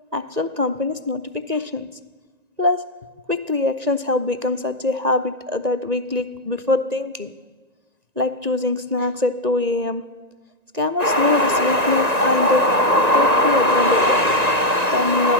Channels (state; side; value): late; left; 1.9 ms